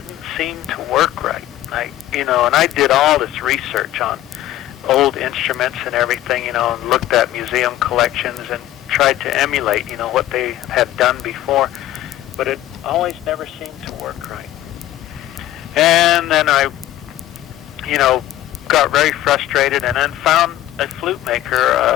seem to work right. And I did all this research on old instruments and everything, and looked at museum collections and tried to emulate, what they had done before, but it always never seemed to work right. And then I, got very frustrated, and then found a flute maker,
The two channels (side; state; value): right; quieter; 14.1 dB